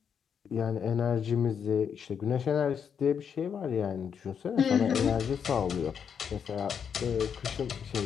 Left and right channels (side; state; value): right; quieter; 7.4 dB